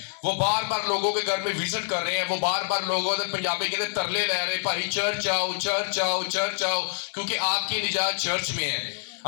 وہ بار بار لوگوں کے گھر میں وزٹ کر رہے ہیں. وہ بار بار لوگوں سے پنجابی کے اندر ترلے لے رہے ہیں، بھائی چرچ آؤ چرچ آؤ چرچ آؤ، کیونکہ آپ کی نجات چرچ میں ہے.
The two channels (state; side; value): silent; right; 61 dB below the other